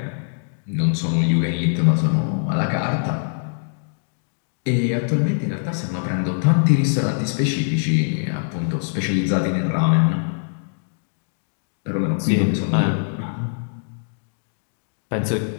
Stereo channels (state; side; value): silent; right; digital silence